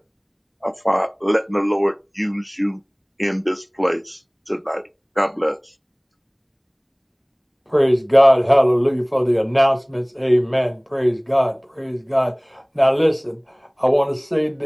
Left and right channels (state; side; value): identical; both; correlation 1.00